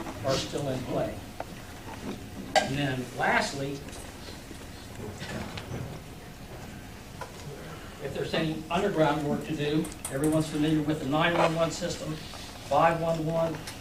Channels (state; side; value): identical; both; correlation 1.00